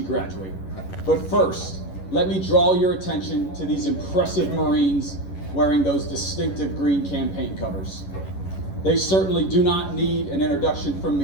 But first, let me draw your attention to these impressive Marines wearing those distinctive green campaign covers. They certainly do not need an introduction from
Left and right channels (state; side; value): late; right; 11 ms